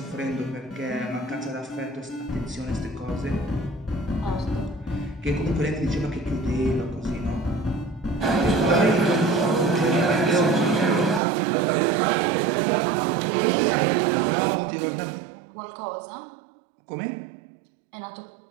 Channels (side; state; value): left; drops out; at 11.2 s